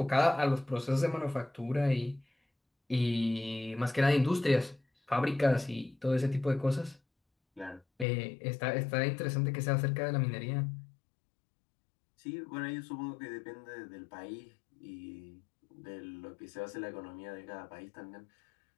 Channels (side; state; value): right; drops out; at 8.1 s